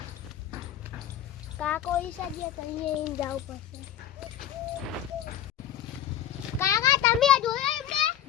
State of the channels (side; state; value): right; quieter; 10.8 dB